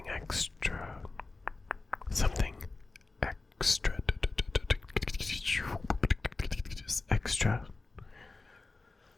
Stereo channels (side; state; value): right; quieter; 3.5 dB